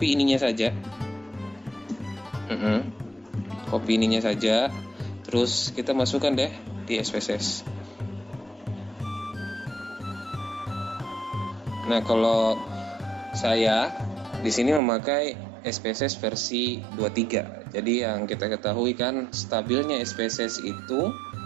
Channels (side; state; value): left; drops out; at 14.8 s